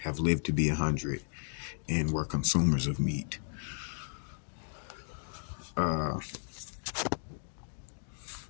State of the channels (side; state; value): right; silent; digital silence